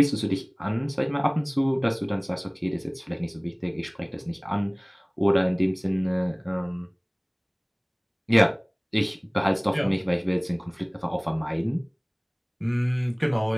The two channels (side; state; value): both; identical; correlation 1.00